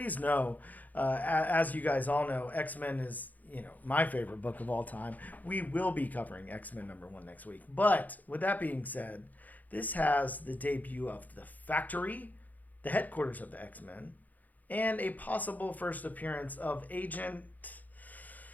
know, as you guys all know, X-Men is, my favorite book of all time. We will be covering X-Men #1 next week. But with that being said, this has the debut of the Factory, the headquarters of the X-Men, and a possible first appearance of Agent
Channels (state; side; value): late; right; 0.081 ms